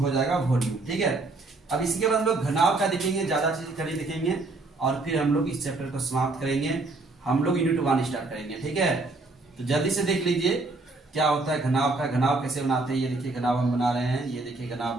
हो जाएगा वॉल्यूम। ठीक है, अब इसके बाद हम लोग घनाभ का देखेंगे, ज्यादा चीज कड़ी देखेंगे, और फिर हम लोग इस चैप्टर को समाप्त करेंगे। हम लोग यूनिट 1 स्टार्ट करेंगे। ठीक है, तो जल्दी से देख लीजिए क्या होता है घनाभ का। घनाभ कैसे बनाते हैं, ये देखिए घनाभ हम बना रहे हैं। ये देखिए घनाभ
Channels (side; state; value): left; quieter; 3.2 dB